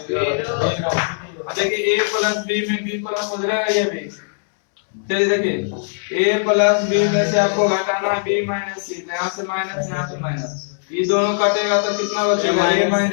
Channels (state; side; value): silent; right; 66 dB below the other